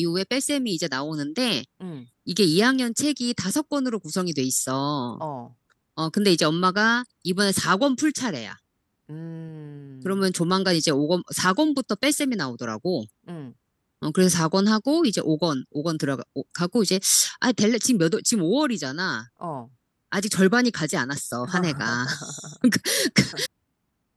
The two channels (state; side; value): identical; both; correlation 1.00